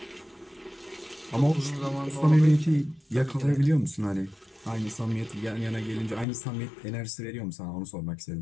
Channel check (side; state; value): right; drops out; at 6.2 s